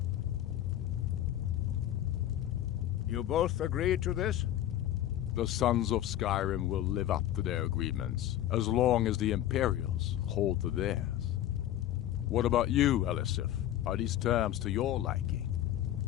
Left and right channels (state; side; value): quieter; right; 12.5 dB